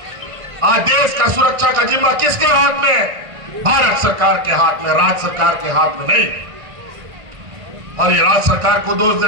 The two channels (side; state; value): left; late; 1.6 ms